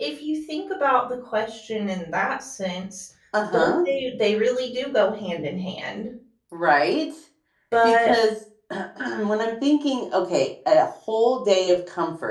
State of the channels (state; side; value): identical; both; correlation 1.00